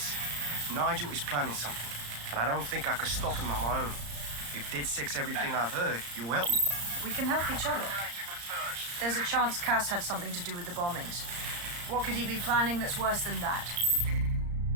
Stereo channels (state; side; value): late; left; 34 ms